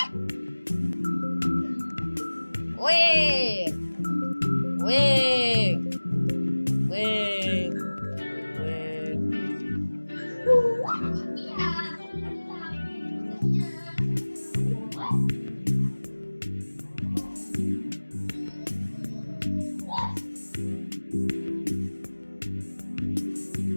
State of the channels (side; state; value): both; inverted; correlation -1.00